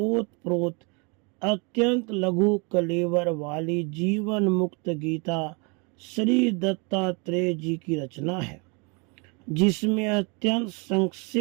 अत्यंत लघु कलेवर वाली जीवन मुक्त गीता श्री दत्तात्रेय जी की रचना है, जिसमें अत्यंत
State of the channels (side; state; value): left; quieter; 32.1 dB